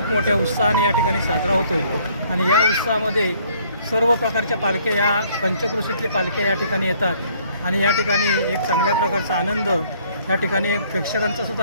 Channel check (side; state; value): both; inverted; correlation -0.62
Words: मोठ्या उत्साहाने या ठिकाणी साजरा होतो. आणि या उत्साहामध्ये सर्व प्रकारच्या पालख्या, या पंचक्रोशीतली पालख्या या ठिकाणी येतात आणि या ठिकाणी एक चांगल्या प्रकारचा आनंद, या ठिकाणी प्रेक्षकांचा